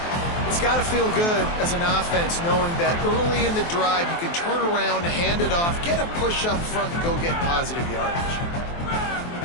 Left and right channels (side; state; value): right; late; 23 ms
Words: It's got to feel good as an offense knowing that early in the drive you can turn around, hand it off, get a push up front, and go get positive yardage.